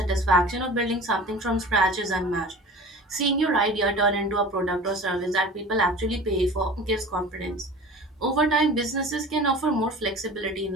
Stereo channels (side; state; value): both; normal; correlation 0.39